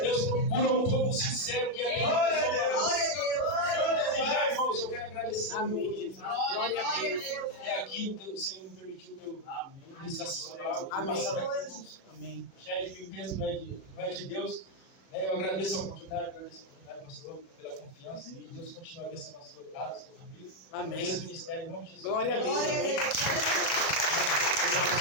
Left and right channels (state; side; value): late; right; 37 ms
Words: Deus procura um povo sincero que é Glória a Deus. desejar, irmãos. Eu quero agradecer. Amém, Jesus. Glória a Deus. É aqui, o Senhor me permitiu que eu ministrasse essa palavra. Amém. Amém. Já é de mim mesmo, não é de Deus. Eu agradeço a oportunidade, pastor, pela confiança. E Deus continue abençoando a sua casa, a sua família. Amém. Esse ministério, em nome de Jesus. Glória a Deus. Glória a Deus.